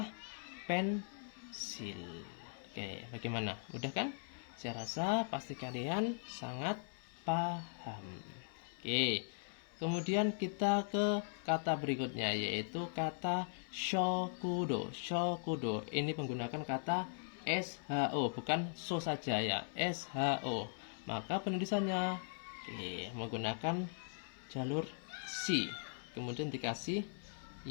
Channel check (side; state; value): right; silent; 51 dB below the other